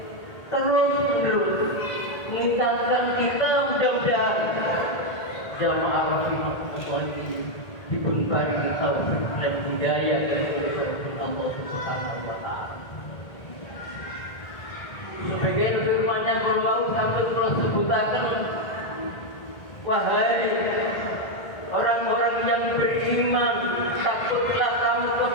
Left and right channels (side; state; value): right; late; 1.7 ms